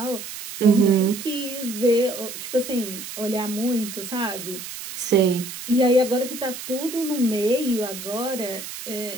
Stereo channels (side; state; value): right; noise; hiss, 10 dB below the sound